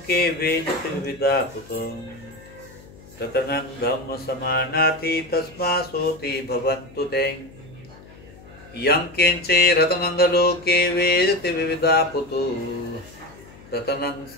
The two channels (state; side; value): noise; left; hum, 21 dB below the sound